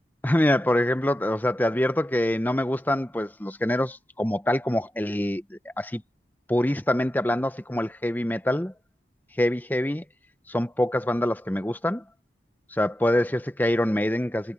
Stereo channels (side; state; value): both; normal; correlation 0.91